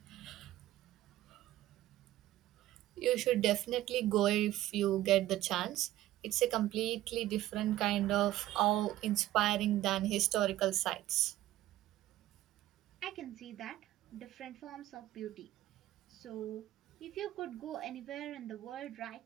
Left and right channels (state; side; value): quieter; left; 14.8 dB